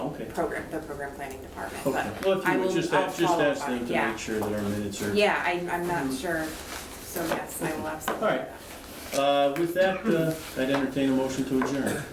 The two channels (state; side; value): identical; both; correlation 1.00